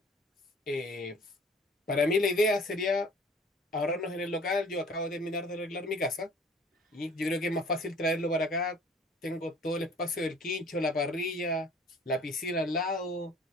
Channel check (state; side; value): normal; both; correlation 0.50